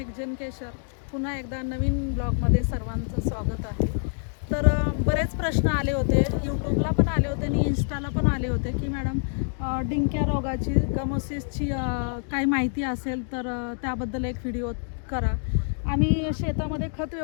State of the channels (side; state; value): right; silent; 61 dB below the other